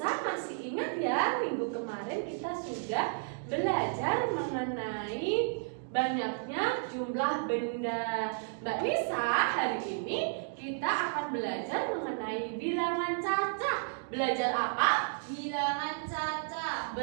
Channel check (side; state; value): left; silent; digital silence